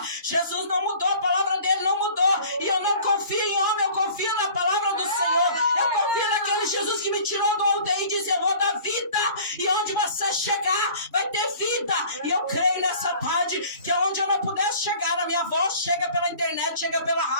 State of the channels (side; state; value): both; inverted; correlation -0.47